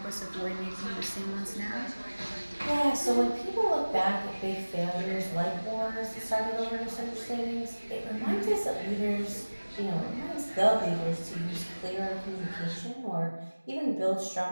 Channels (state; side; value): inverted; both; correlation -1.00